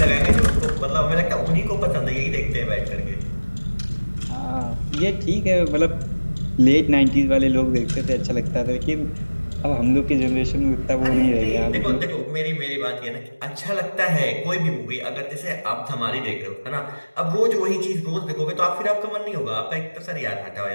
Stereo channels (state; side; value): inverted; both; correlation -1.00